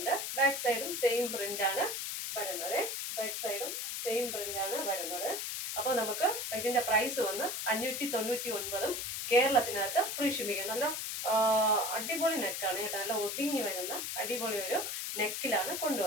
ബാക്ക് സൈഡും സെയിം പ്രിന്റ് ആണ് വരുന്നത്. അപ്പൊ നമുക്ക് ഇതിന്റെ പ്രൈസ് വന്ന് 599. കേരളത്തിനകത്ത് ഫ്രീ ഷിപ്പിംഗ്. നല്ല അടിപൊളി നെക്കാണ് കേട്ടോ. നല്ല ഒതുങ്ങി വരുന്ന അടിപൊളി ഒരു നെക്കിലാണ്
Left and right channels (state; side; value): noise; left; hiss, 3 dB below the sound